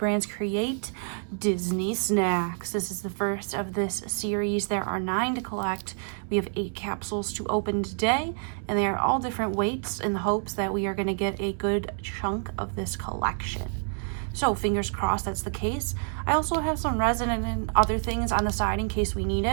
Create Disney snacks. This is the first of this series. There are 9 to collect. We have 8 capsules to open today, and they are all different weights in the hopes that we are going to get a good chunk of this collection. So fingers crossed that's the case. I also have some resin and other things on the side in case we need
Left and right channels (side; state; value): left; silent; 60 dB below the other